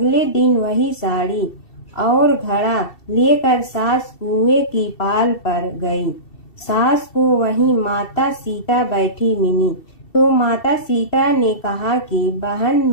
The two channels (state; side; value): late; right; 2.7 ms